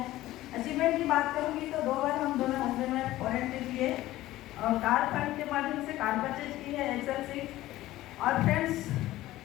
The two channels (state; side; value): quieter; right; 15.9 dB